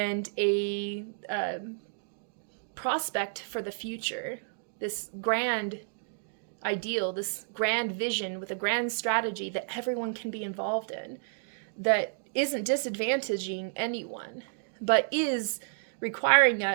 a prospect for the future, this grand ideal, this grand vision with a grand strategy that everyone can be involved in, that isn't disadvantaging anyone, but is requiring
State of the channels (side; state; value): left; silent; digital silence